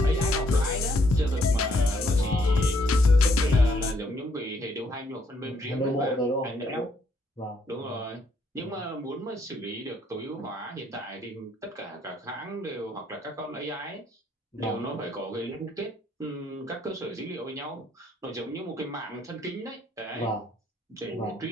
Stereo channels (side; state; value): both; normal; correlation 0.70